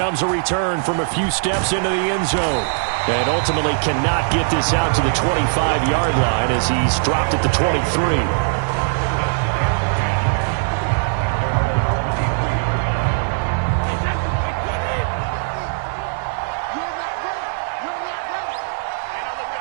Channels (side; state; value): left; silent; digital silence